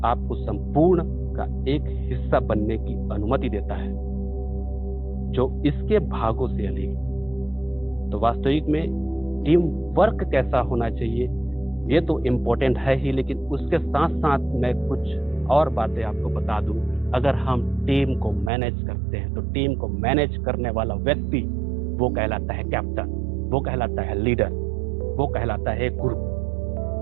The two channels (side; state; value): left; drops out; at 18.5 s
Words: आपको संपूर्ण का एक हिस्सा बनने की अनुमति देता है, जो इसके भागों से अलग। तो वास्तविक में टीम वर्क कैसा होना चाहिए ये तो इम्पोर्टेंट है ही, लेकिन उसके साथ साथ मैं कुछ और बातें आपको बता दूं। अगर हम टीम को मैनेज करते हैं तो टीम को मैनेज करने वाला व्यक्ति वो कहलाता है कैप्टन, वो कहलाता है लीडर, वो कहलाता है गुरु।